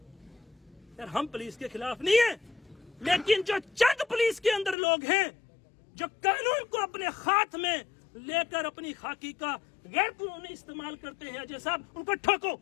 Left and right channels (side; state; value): right; drops out; at 4.8 s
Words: यार। हम पुलिस के खिलाफ नहीं है, लेकिन जो चंद पुलिस के अंदर लोग हैं जो कानून को अपने हाथ में लेकर अपनी खाकी का गैर कानूनी इस्तेमाल करते हैं, अजय साहब उनको ठोको,